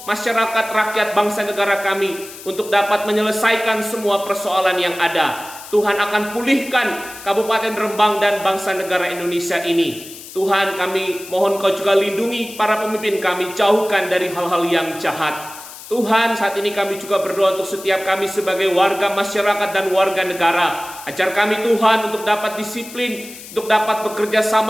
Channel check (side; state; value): left; noise; hiss, 15 dB below the sound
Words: masyarakat, rakyat, bangsa, negara kami untuk dapat menyelesaikan semua persoalan yang ada. Tuhan akan pulihkan Kabupaten Rembang dan bangsa negara Indonesia ini. Tuhan, kami mohon Kau juga lindungi para pemimpin kami, jauhkan dari hal-hal yang jahat. Tuhan, saat ini kami juga berdoa untuk setiap kami sebagai warga masyarakat dan warga negara. Ajar kami Tuhan untuk dapat disiplin, untuk dapat bekerja